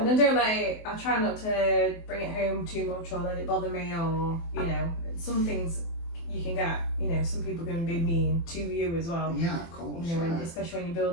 I try not to bring it home too much or let it bother me, or, you know, some things you can get, you know, some people can be mean to you as well. Yeah, of course. You know, especially when you're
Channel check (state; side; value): late; right; 24 ms